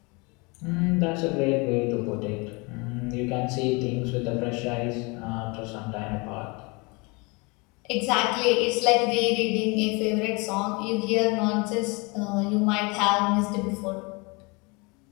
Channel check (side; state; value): right; quieter; 28.4 dB